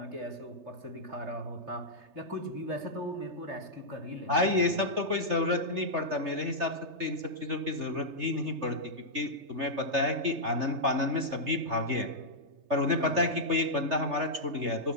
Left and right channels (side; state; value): left; late; 3.3 ms